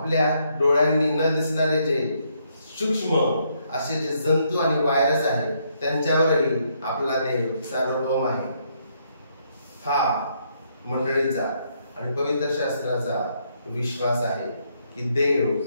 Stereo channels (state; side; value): inverted; both; correlation -0.73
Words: डोळ्यांनी न दिसणारे जे सूक्ष्म असे जे जंतू आणि व्हायरस आहेत त्यांच्यावरही आपला देव सार्वभौम आहे. हा मंडळीचा आणि पवित्र शास्त्राचा विश्वास आहे की देव